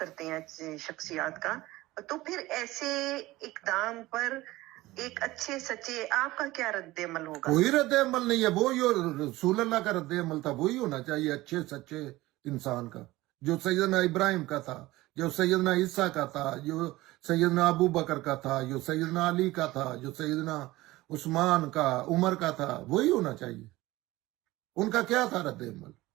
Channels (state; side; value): quieter; left; 18.5 dB